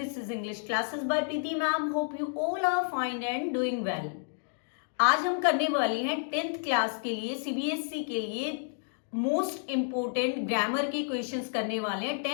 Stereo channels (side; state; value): right; silent; digital silence